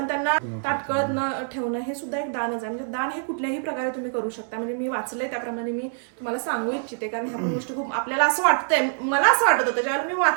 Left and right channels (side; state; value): left; silent; 62 dB below the other